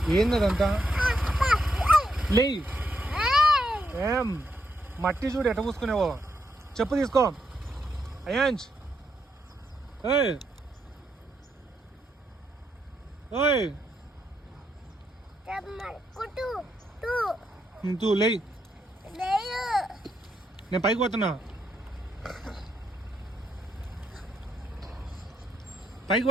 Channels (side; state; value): both; normal; correlation 0.79